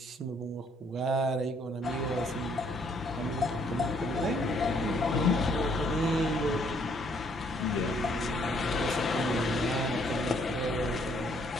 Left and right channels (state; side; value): normal; both; correlation 0.66